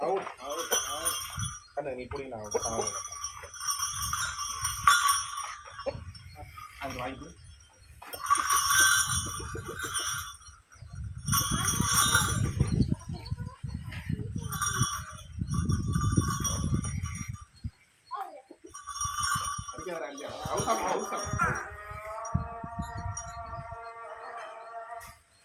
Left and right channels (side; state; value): both; identical; correlation 1.00